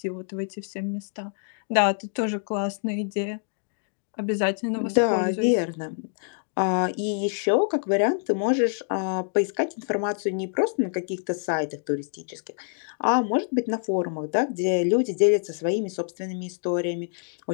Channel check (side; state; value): right; silent; digital silence